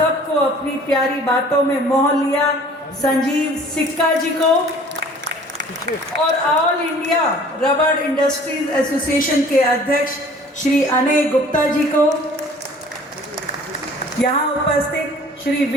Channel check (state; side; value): normal; both; correlation 0.50